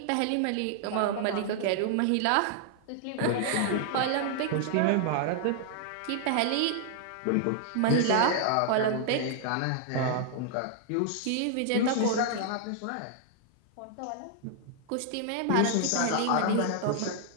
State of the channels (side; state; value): both; different; correlation -0.01